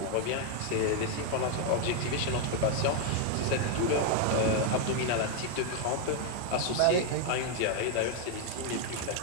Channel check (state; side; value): different; both; correlation 0.01